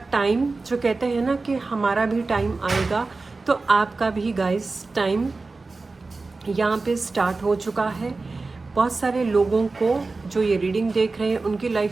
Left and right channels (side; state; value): left; quieter; 3.7 dB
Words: टाइम, जो कहते हैं ना कि हमारा भी टाइम आएगा, तो आपका भी गाइस टाइम यहाँ पे स्टार्ट हो चुका है। बहुत सारे लोगों को जो ये रीडिंग देख रहे हैं, उनकी